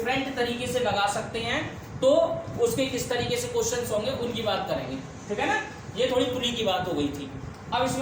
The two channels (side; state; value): both; identical; correlation 1.00